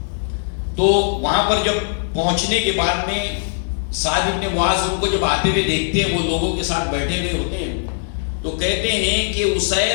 تو وہاں پر جب پہنچنے کے بعد میں سعد بن معاذ ان کو جب آتے ہوئے دیکھتے ہیں، وہ لوگوں کے ساتھ بیٹھے ہوئے ہوتے ہیں، تو کہتے ہیں کہ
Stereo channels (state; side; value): silent; right; 66 dB below the other